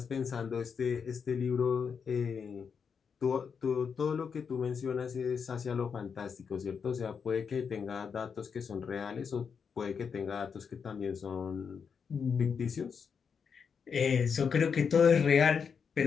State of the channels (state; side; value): quieter; right; 6.4 dB